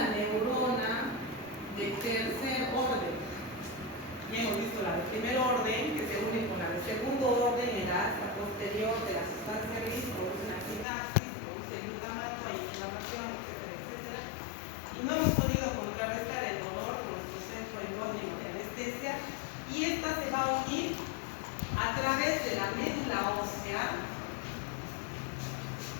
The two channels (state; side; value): drops out; right; at 10.9 s